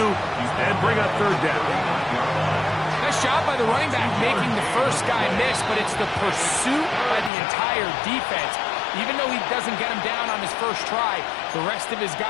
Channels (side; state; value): right; drops out; at 7.3 s